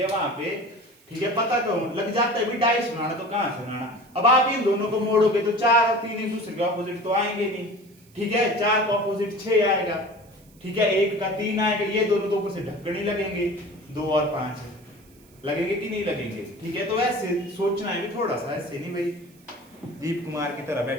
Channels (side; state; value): right; noise; hiss, 29 dB below the sound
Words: वहां पे ठीक है पता क्यों लग जाता है भी डाइस बनाना तो कहां से बनाना। अब आप इन दोनों को मोड़ोगे तो 4 और 3 एक दूसरे के ऑपोजिट तो आएंगे नहीं। ठीक है, 4 का ऑपोजिट 6 आएगा। ठीक है, 1 का 3 आएगा, ये दोनों तो ऊपर से ढक्कन ही लगेंगे। 2 और 5 लगेंगे कि नहीं लगेंगे। ठीक है, तो ऐसे सोचना है भी थोड़ा सा, ऐसे नहीं भाई दीप कुमार की तरह